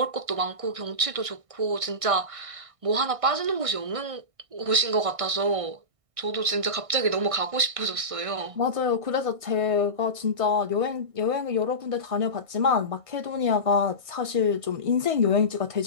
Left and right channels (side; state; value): left; late; 1.6 ms